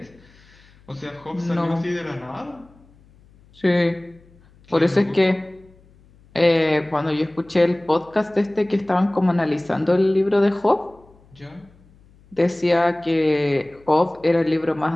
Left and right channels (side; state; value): left; noise; hum, 28 dB below the sound